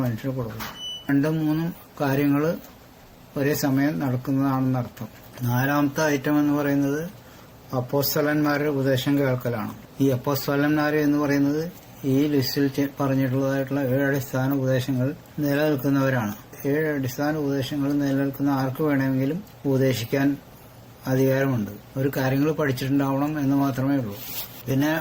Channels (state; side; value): identical; both; correlation 1.00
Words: മനുഷ്യന് കൊടുക്കും. 2-3 കാര്യങ്ങൾ ഒരേ സമയം നടക്കുന്നതാണെന്നർത്ഥം. 4ാമത്തെ ഐറ്റം എന്ന് പറയുന്നത് അപ്പോസ്തലന്മാരുടെ ഉപദേശം കേൾക്കലാണ്. ഈ അപ്പോസ്തലന്മാർ എന്ന് പറയുന്നത് ഈ ലിസ്റ്റിൽ പറഞ്ഞിട്ടുള്ളതായിട്ടുള്ള 7 അടിസ്ഥാന ഉപദേശങ്ങൾ നിലനിൽക്കുന്നവരാണ്. 7 അടിസ്ഥാന ഉപദേശങ്ങൾ നിലനിൽക്കുന്ന ആർക്ക് വേണമെങ്കിലും ഉപദേശിക്കാൻ അധികാരമുണ്ട്. ഒരു കാര്യങ്ങൾ പഠിച്ചിട്ടുണ്ടാവണം എന്ന് മാത്രമേ ഉള്ളൂ. പിന്നെ